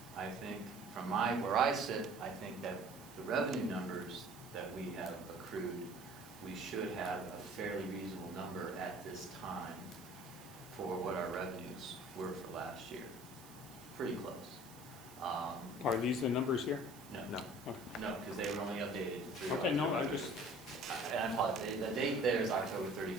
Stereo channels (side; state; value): right; noise; hiss, 19 dB below the sound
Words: I think, from where I sit, I think that the revenue numbers that we have accrued, we should have a fairly reasonable number at this time for what our revenues were for last year. Pretty close. Are these the numbers here? No, Okay. no, because they were only updated through Okay, no, October. I just, And I apologize, the date there is October